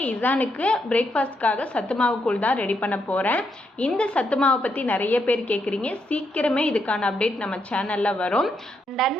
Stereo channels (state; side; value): normal; both; correlation 0.79